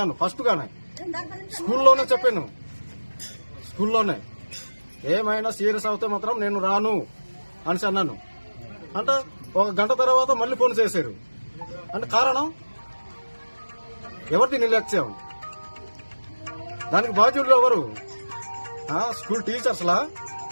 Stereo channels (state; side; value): inverted; both; correlation -1.00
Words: ఫస్ట్ గానే స్కూల్లోనే చెప్పాను. స్కూల్లోనే ఏమైనా సీరియస్ అవుతే మాత్రం నేను రాను అనేసి అన్నాను. అంటే 1 గంట తర్వాత మళ్ళీ ఫోన్ చేశారు. అంటే కారణం ఎవరిది నిర్లక్ష్యం? దానికి బాధ్యులు ఎవరు? స్కూల్ టీచర్స్లా